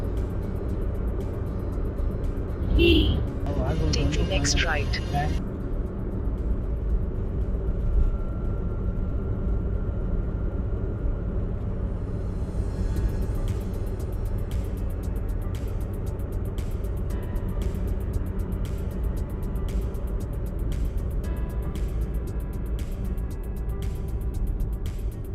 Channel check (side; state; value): both; identical; correlation 1.00